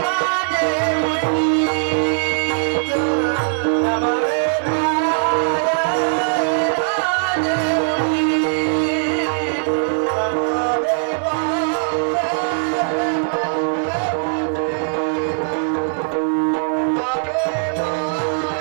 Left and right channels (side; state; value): left; silent; digital silence